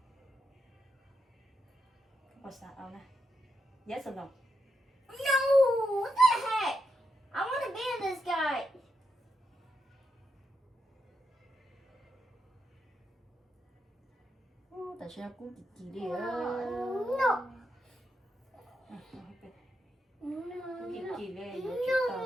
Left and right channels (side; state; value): both; normal; correlation 0.83